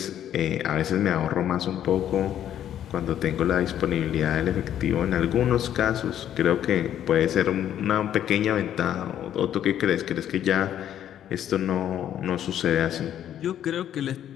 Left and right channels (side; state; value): right; quieter; 10.6 dB